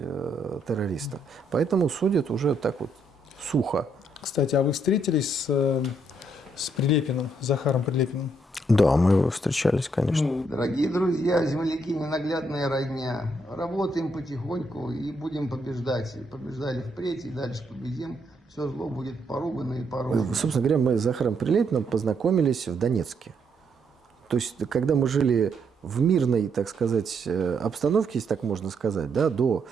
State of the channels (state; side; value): normal; both; correlation 0.74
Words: террориста. Поэтому судят уже так вот сухо. Кстати, а вы встретились с Прилепиным, Захаром Прилепиным? Да, мы встречались, конечно. Дорогие друзья, земляки, ненаглядная родня. Работаем потихоньку и будем побеждать. Побеждали впредь и дальше победим. Все зло будет поругано и порушено. Собственно говоря, мы с Захаром Прилепиным познакомились в Донецке. То есть, когда мы жили в мирной, так сказать, обстановке, если так можно сказать, да, до